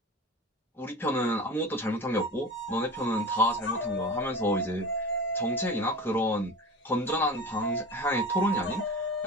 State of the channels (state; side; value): normal; both; correlation 0.32